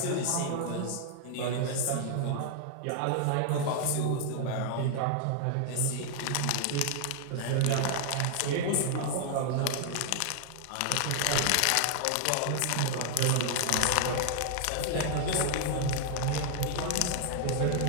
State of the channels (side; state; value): both; different; correlation 0.00